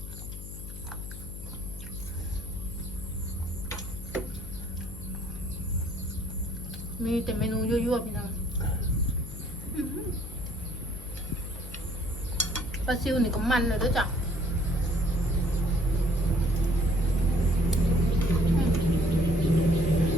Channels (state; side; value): noise; left; hum, 10 dB below the sound